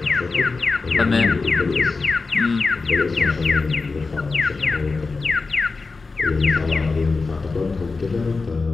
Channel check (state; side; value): quieter; right; 4.1 dB